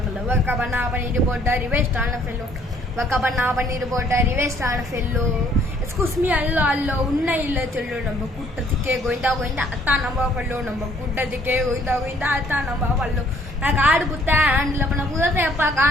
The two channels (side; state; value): both; normal; correlation 0.62